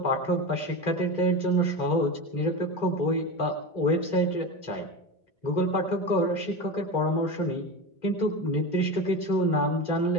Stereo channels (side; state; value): right; late; 2.1 ms